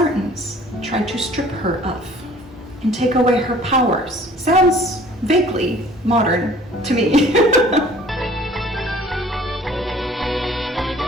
tried to strip her of and take away her powers. Sounds vaguely modern to me.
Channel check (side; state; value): both; normal; correlation 0.51